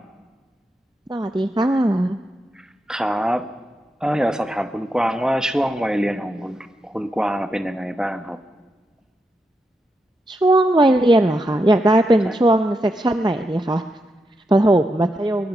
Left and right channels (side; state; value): both; normal; correlation 0.84